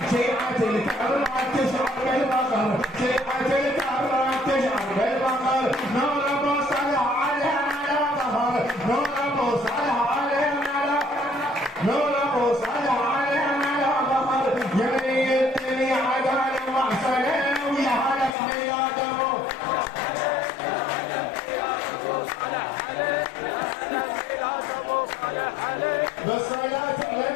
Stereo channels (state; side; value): drops out; right; at 18.4 s